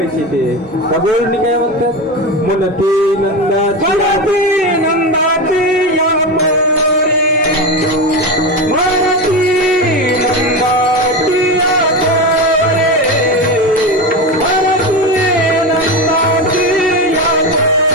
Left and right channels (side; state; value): both; normal; correlation 0.19